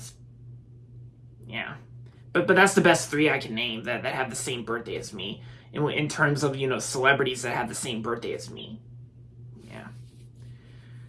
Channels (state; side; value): identical; both; correlation 1.00